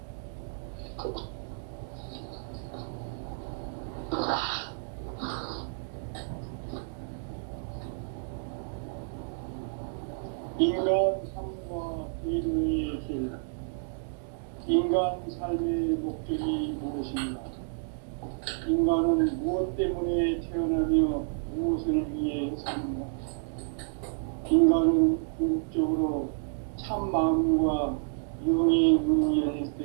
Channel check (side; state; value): left; silent; digital silence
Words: 인간 삶과 대도의 길. 인간 삶의 목적이 무엇인가? 인간은 무엇 때문에 태어나며 무엇을 위해 사는가? 인간은 궁극적으로 참 마음과 영의 문이 열릴 때